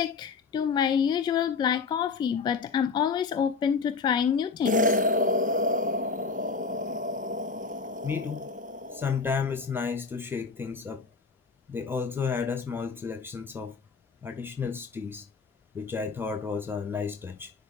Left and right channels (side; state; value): right; quieter; 4.8 dB